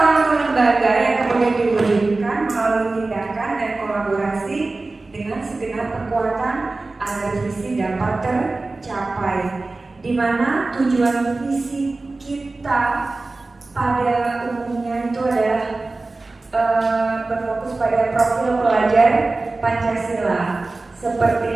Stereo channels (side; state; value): left; quieter; 3.4 dB